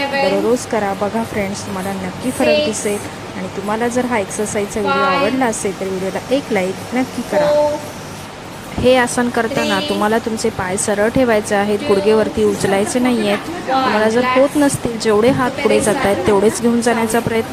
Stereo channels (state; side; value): identical; both; correlation 1.00